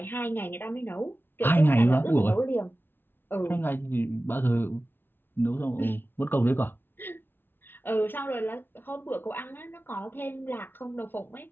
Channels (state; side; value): late; right; 0.10 ms